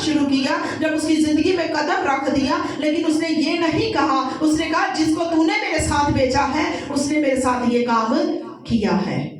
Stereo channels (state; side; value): identical; both; correlation 1.00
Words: شروع کیا، جب اس کی زندگی میں قدم رکھ دیا، لیکن اس نے یہ نہیں کہا، اس نے کہا جس کو تو نے میرے ساتھ بھیجا ہے اس نے میرے ساتھ یہ کام کیا ہے،